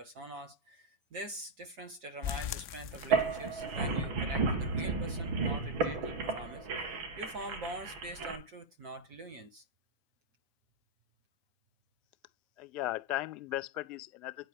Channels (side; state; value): left; late; 6.4 ms